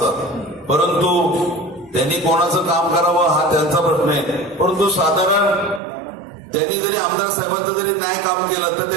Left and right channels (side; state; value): left; drops out; at 5.8 s